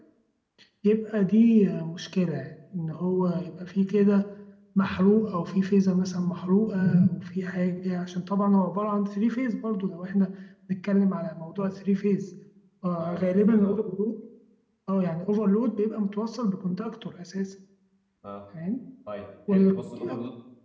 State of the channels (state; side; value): identical; both; correlation 1.00